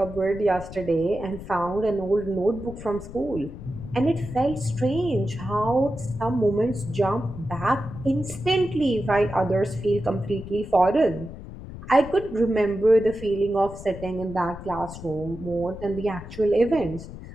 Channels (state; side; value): noise; left; rumble, 13 dB below the sound